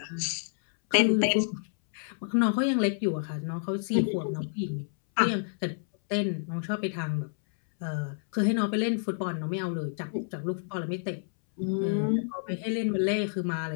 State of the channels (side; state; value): right; silent; 59 dB below the other